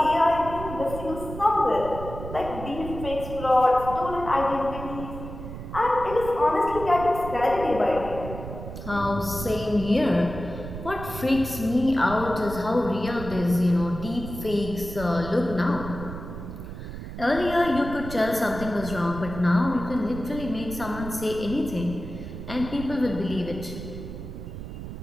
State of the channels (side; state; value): right; noise; rumble, 10 dB below the sound